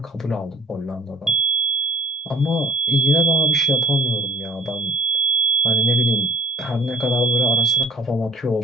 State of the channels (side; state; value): both; normal; correlation 0.50